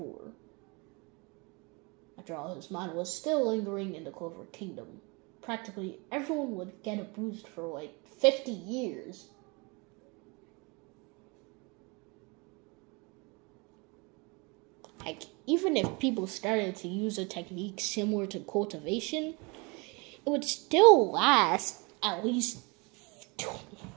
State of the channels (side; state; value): left; quieter; 29.0 dB